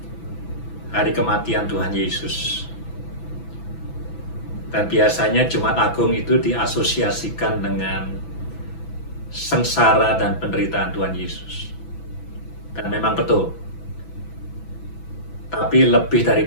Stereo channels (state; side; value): late; right; 6.0 ms